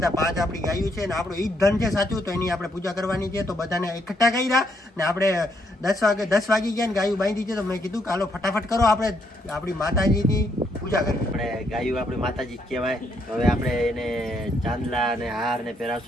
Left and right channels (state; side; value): normal; both; correlation 0.74